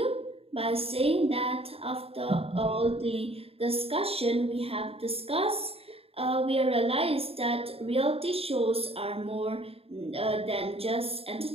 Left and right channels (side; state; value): left; late; 0.28 ms